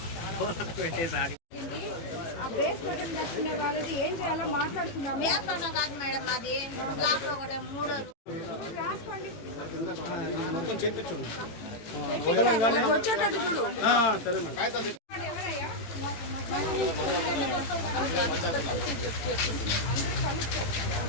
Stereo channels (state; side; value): late; right; 18 ms